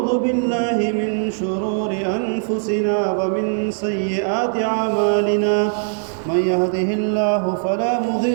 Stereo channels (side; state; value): left; silent; digital silence